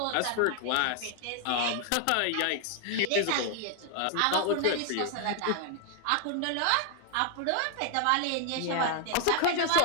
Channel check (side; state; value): both; different; correlation 0.00